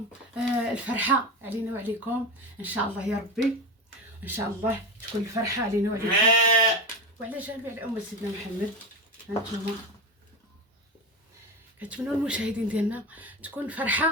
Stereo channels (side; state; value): both; normal; correlation 0.20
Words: الفرحه علينا وعليكم ان شاء الله يا ربي. ان شاء الله تكون الفرحه علينا وعليكم وعلى جميع الامه سيدنا محمد. هانتوما كنتمنوا المشاهدين ديالنا تكون